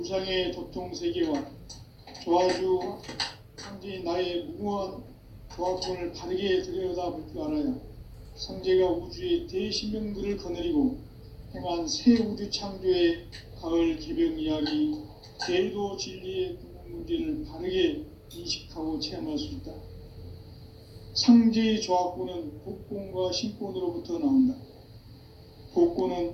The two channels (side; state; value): both; identical; correlation 1.00